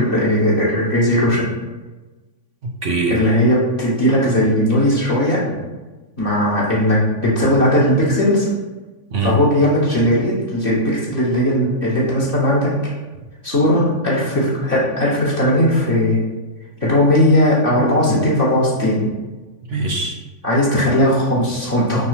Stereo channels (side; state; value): left; late; 3.5 ms